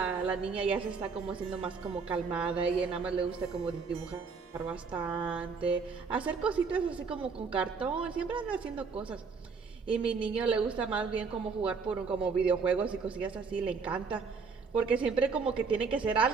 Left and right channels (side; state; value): left; quieter; 5.1 dB